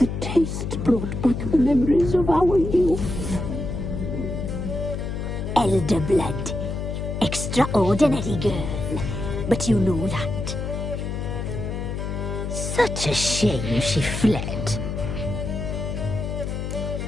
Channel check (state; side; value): noise; left; hum, 4 dB below the sound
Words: taste brought back the memories of our youth. Elder blood. Extraordinary girl. But you know that. Such a shame she fled.